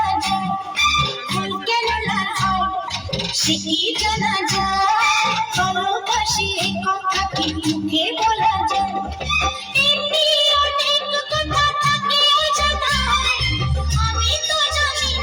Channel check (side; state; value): both; identical; correlation 1.00